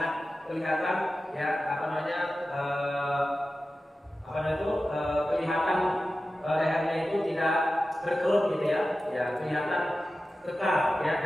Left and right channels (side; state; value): both; normal; correlation 0.94